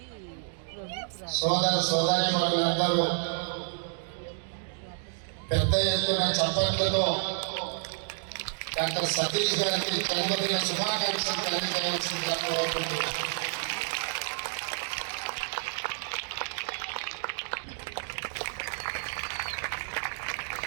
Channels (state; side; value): silent; left; digital silence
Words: సోదరి వాళ్ళందరూ పెద్ద ఎత్తున చప్పట్లతో డాక్టర్ సతీష్ గారికి జన్మదిన శుభాకాంక్షలు తెలియజేయాల్సిందిగా కోరుకుంటున్నాను.